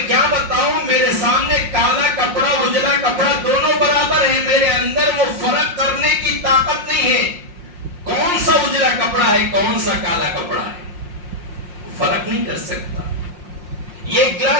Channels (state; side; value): late; left; 5.6 ms